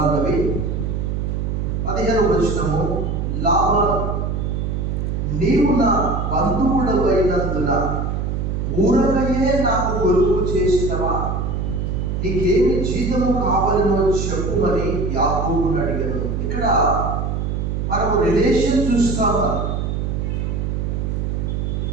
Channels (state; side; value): noise; right; hum, 1 dB below the sound